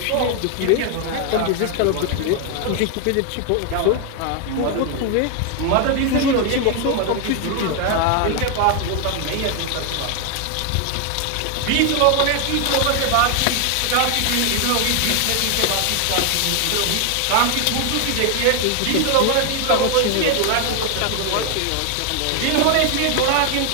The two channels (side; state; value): both; different; correlation 0.00